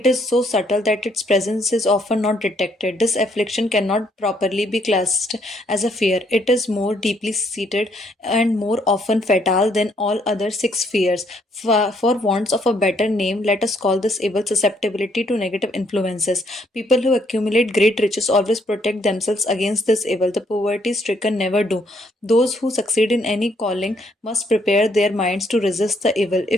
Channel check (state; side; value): normal; both; correlation 0.70